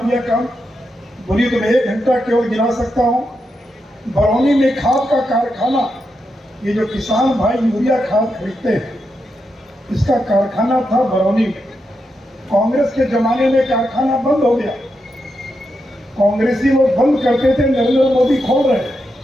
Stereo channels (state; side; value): normal; both; correlation 0.85